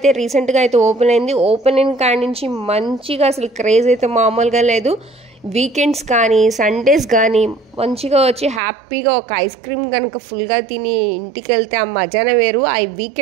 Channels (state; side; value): drops out; left; at 8.6 s